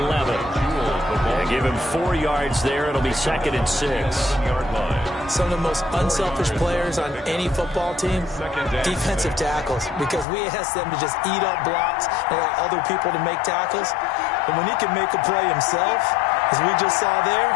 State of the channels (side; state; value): right; drops out; at 10.2 s